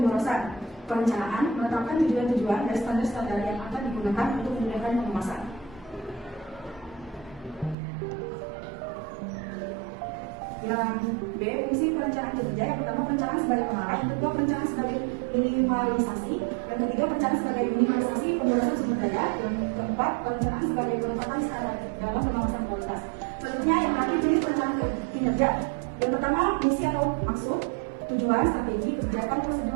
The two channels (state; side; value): drops out; left; at 7.8 s